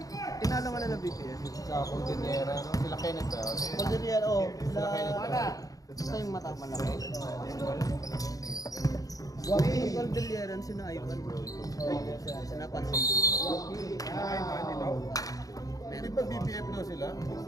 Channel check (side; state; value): right; late; 0.17 ms